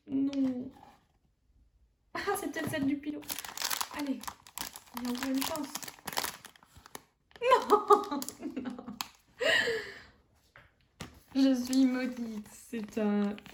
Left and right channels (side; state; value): both; identical; correlation 1.00